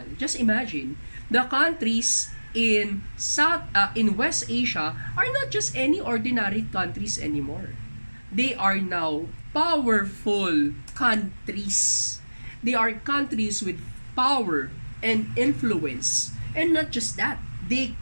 Just imagine, the countries in West Asia are not just any ordinary countries anymore. They are now powerful countries. They are countries with power and influence. And not just that, they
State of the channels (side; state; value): both; inverted; correlation -1.00